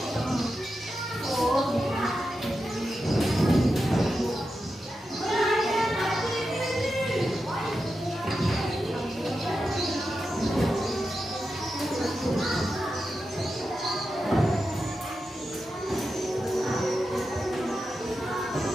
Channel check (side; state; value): both; normal; correlation 0.89